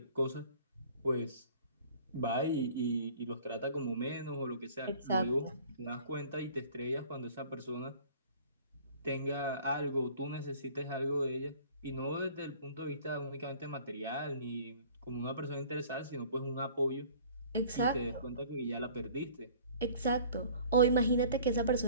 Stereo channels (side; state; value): both; inverted; correlation -0.49